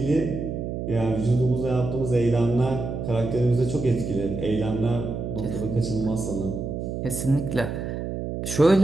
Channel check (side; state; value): right; noise; hum, 5 dB below the sound